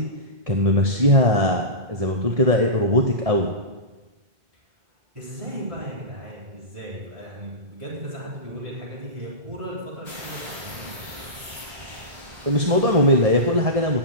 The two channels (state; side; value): late; left; 1.7 ms